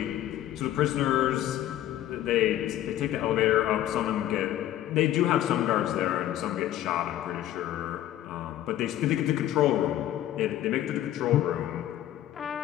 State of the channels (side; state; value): right; quieter; 12.8 dB